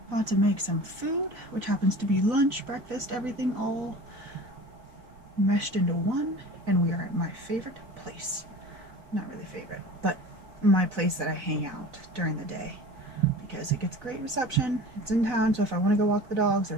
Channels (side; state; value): left; late; 4.0 ms